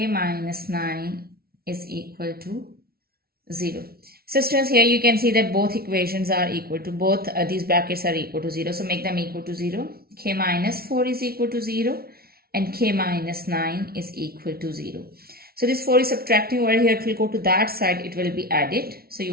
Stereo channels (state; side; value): late; left; 0.44 ms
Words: minus 9 is equal to 0. So students, here you can see that both equations are equal to, both these brackets are equal to 0. So make them equal to 0. K minus 4 is equal to 0, and k minus 9 is equal to 0. So this 4 is subtracting over here. It will go to that side. It will be added. So you